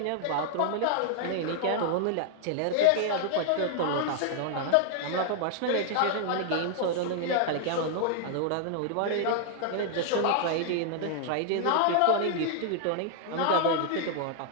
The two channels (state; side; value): different; both; correlation 0.00